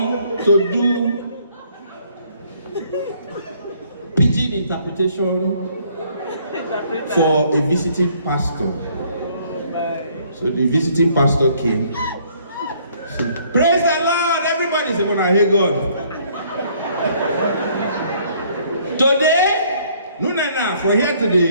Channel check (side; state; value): both; inverted; correlation -0.63